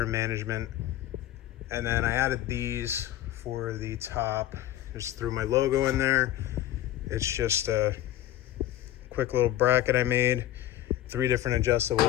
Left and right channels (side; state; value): right; quieter; 13.4 dB